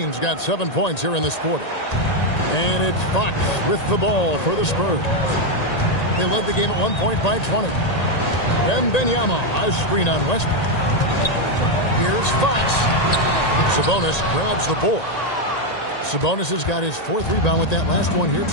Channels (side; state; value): right; late; 1.9 ms